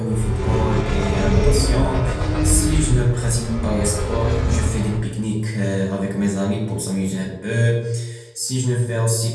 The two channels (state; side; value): identical; both; correlation 1.00